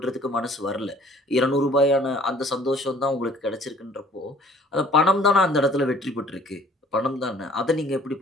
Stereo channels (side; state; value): both; normal; correlation 0.54